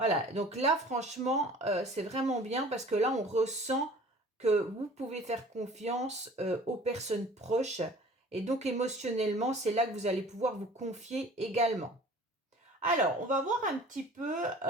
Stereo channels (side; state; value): both; normal; correlation 0.47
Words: donc là franchement, c'est vraiment bien parce que là on ressent que vous pouvez faire confiance aux personnes proches et donc émotionnellement, c'est là que vous allez pouvoir vous confier également. Alors, on va voir un petit peu